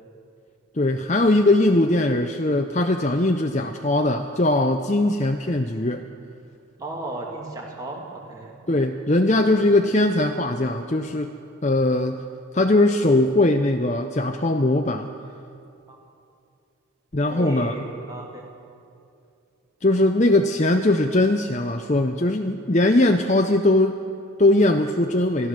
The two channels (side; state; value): both; normal; correlation 0.53